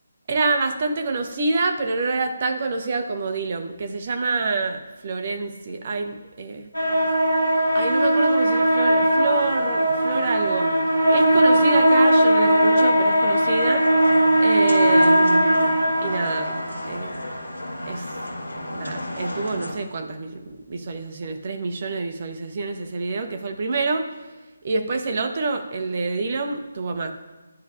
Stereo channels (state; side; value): inverted; both; correlation -0.87